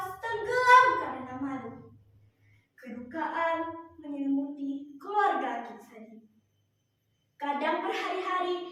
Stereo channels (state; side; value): identical; both; correlation 1.00